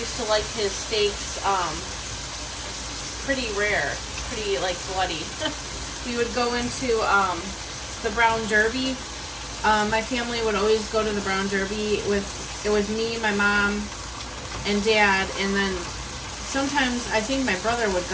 used to like his steaks pretty rare, pretty like bloody. We would go into the Brown Derby. My family would always go to the Brown Derby it was me, my mom, and dad, and then sometimes I think my brother would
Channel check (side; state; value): both; identical; correlation 1.00